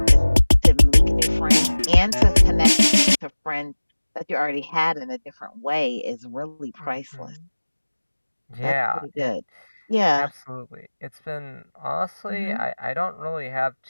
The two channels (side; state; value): both; inverted; correlation -1.00